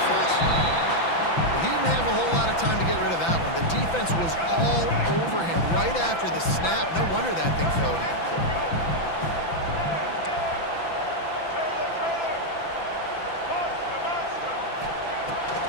He didn't have a whole lot of time to get rid of that one. The defense was all over him right after the snap. No wonder that thing fell incomplete.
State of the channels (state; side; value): late; right; 5.9 ms